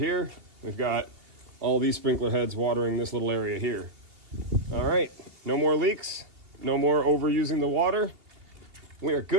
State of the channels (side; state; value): left; late; 2.9 ms